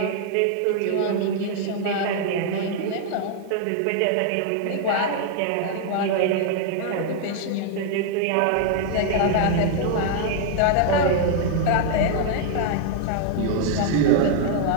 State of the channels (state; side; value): different; both; correlation 0.00